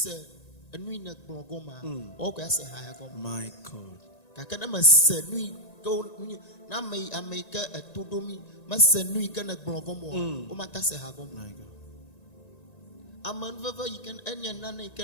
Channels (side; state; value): right; late; 1.9 ms